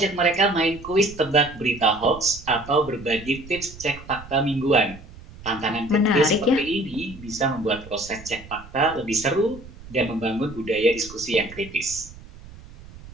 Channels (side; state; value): right; noise; rumble, 18 dB below the sound